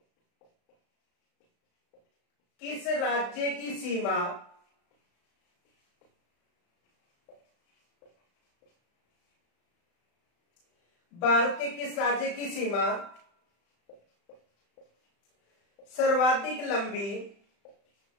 किस राज्य की सीमा भारत के किस राज्य की सीमा सर्वाधिक लंबी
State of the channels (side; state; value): right; late; 35 ms